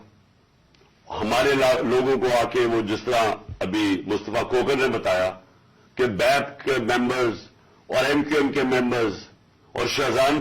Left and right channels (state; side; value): identical; both; correlation 1.00